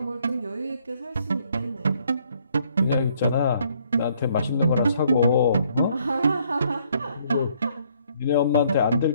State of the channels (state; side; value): inverted; both; correlation -0.67